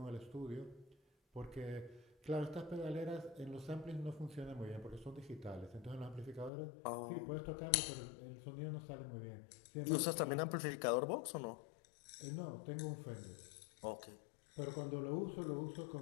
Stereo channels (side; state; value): right; drops out; at 6.5 s